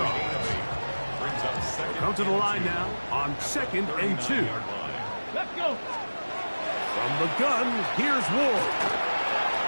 Come to the line now on 2nd and 2. Let's go. From the gun, here's Ward.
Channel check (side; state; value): both; inverted; correlation -1.00